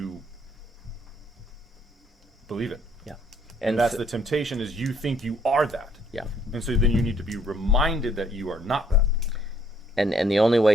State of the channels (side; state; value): both; normal; correlation 0.65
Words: believe it. Yeah. And that's the temptation, is you think you are that. Yeah. And so then you need to be reminded that you are not that. And the only